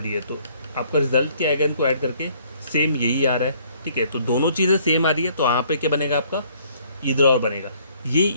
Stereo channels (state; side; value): inverted; both; correlation -0.62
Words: दिए, तो आपका रिजल्ट क्या आएगा, इनको ऐड करके सेम यही आ रहा है, ठीक है। तो दोनों चीज़ें सेम आ रही है, तो यहाँ पे क्या बनेगा आपका, ईदर और बनेगा। ये